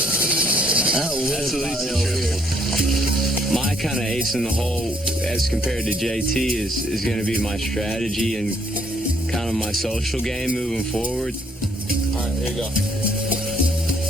That's at least a triple. My kind of ace in the hole as compared to JT is going to be my strategy and kind of my social game moving forward. All right, here you go.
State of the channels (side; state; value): both; normal; correlation 0.68